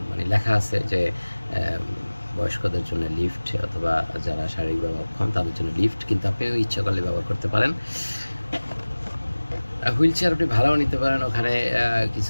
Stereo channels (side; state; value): both; inverted; correlation -1.00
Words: মানে লেখা আছে যে বয়স্কদের জন্য লিফট, অথবা যারা শারীরিকভাবে অক্ষম তাদের জন্য লিফট, কিন্তু আপনিও ইচ্ছা করলে ব্যবহার করতে পারেন। হুইল চেয়ার আপনি ভাড়াও নিতে পারেন, ওখানে